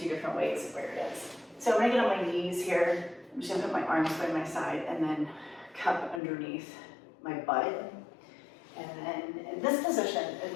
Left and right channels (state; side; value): drops out; right; at 6.2 s